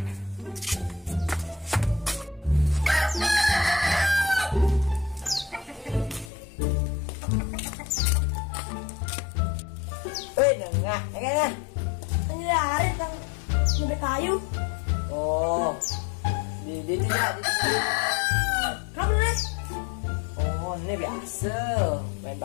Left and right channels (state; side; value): drops out; right; at 6.3 s